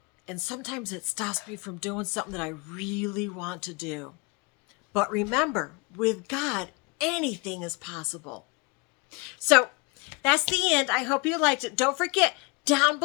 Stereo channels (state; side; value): quieter; right; 28.6 dB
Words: and sometimes it stops me from doing something that I really want to do. But remember, with God, anything is possible. So that's the end. I hope you liked it. Don't forget, down